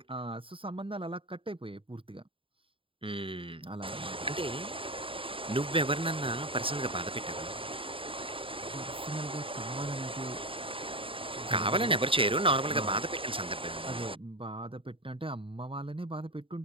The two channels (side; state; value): left; late; 0.26 ms